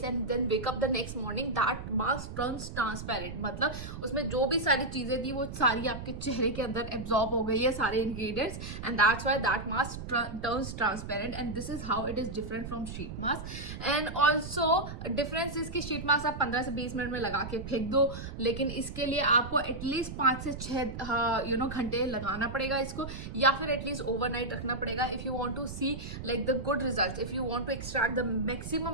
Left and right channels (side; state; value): right; noise; rumble, 9 dB below the sound